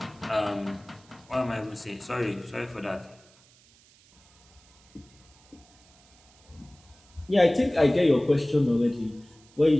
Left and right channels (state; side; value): noise; right; hiss, 29 dB below the sound